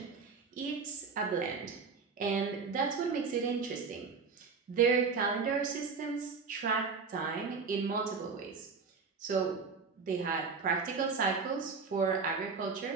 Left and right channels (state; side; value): quieter; left; 5.0 dB